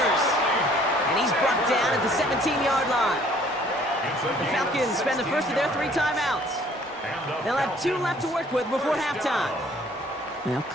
And he's brought down at the 17-yard line. The Falcons spend the first of their 3 timeouts. They'll have 2 left to work with before halftime. They'll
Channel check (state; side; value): normal; both; correlation 0.58